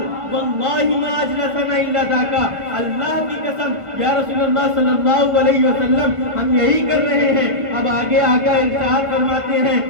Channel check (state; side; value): late; left; 1.5 ms